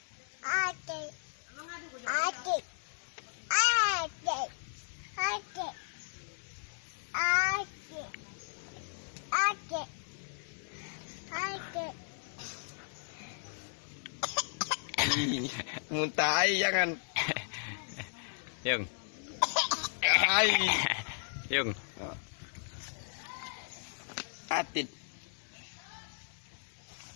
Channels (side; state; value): right; silent; 54 dB below the other